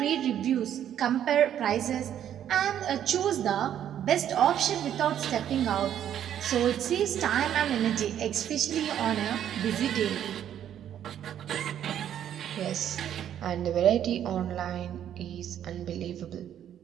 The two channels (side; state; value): left; quieter; 10.3 dB